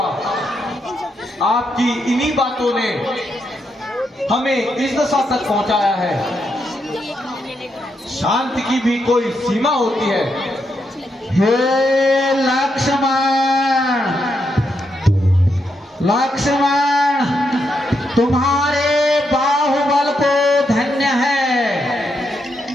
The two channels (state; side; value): normal; both; correlation 0.81